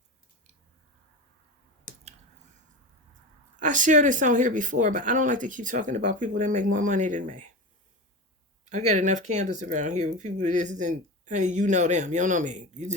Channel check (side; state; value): both; normal; correlation 0.25